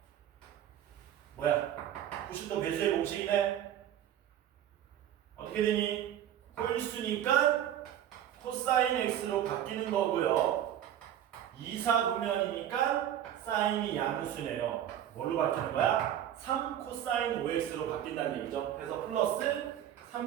뭐야? 90도 배수의 공식이네? 어떻게 되니? 홀수니까 코사인 x로 바뀌는 거고요. 2사분면이니까 사인이 양수네요. 뭘로 바뀌는 거야? 3 코사인 5x로 바뀐다는 얘기죠. 그래서 플러스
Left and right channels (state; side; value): quieter; left; 10.9 dB